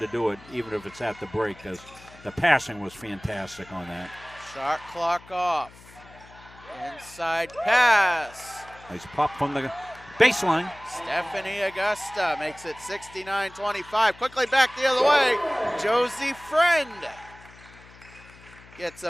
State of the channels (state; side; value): noise; left; hum, 22 dB below the sound